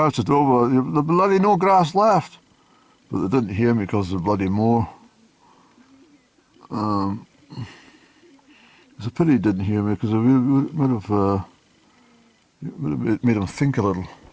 over, "There's bloody no grass left." But they didn't hear me because of the bloody moor. It's a pity he didn't hear me because it would have made him think a little.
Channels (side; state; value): both; identical; correlation 1.00